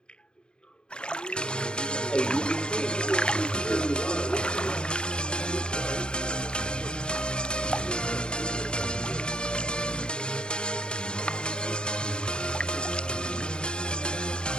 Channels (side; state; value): right; late; 0.050 ms